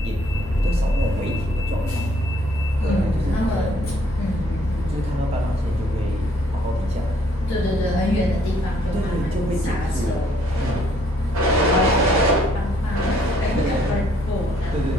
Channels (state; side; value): normal; both; correlation 0.65